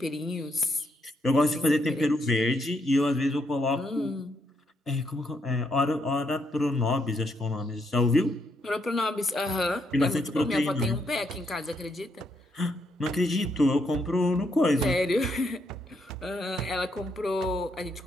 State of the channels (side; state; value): both; normal; correlation 0.76